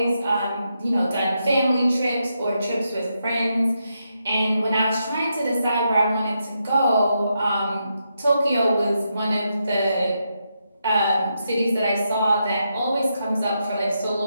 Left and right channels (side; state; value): both; inverted; correlation -0.82